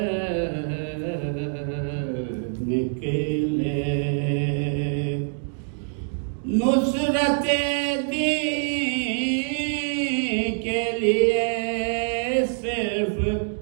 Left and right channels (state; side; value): silent; left; 61 dB below the other